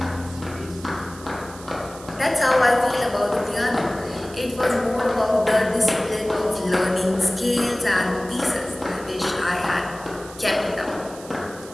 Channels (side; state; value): right; noise; hiss, 18 dB below the sound